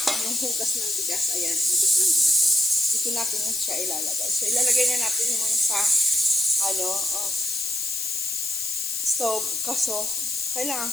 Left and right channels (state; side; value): noise; left; hiss, 2 dB below the sound